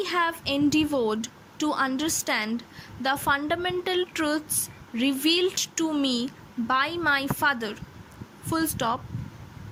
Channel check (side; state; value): both; identical; correlation 1.00